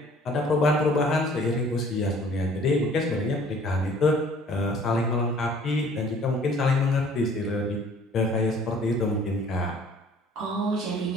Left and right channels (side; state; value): both; normal; correlation 0.54